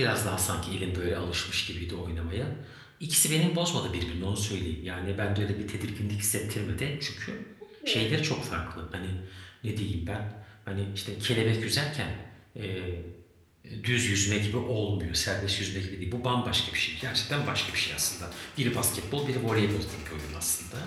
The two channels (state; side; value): identical; both; correlation 1.00